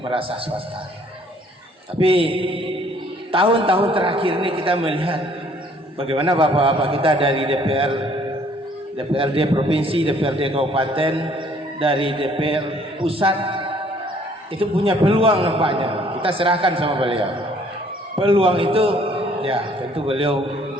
madrasah swasta. Tapi tahun-tahun terakhir ini kita melihat bagaimana bapak-bapak kita dari DPR, DPRD provinsi, DPRD kabupaten, dari DPR pusat itu punya peluang nampaknya. Kita serahkan sama beliau. Peluang itu ya tentu beliau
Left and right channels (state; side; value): normal; both; correlation 0.60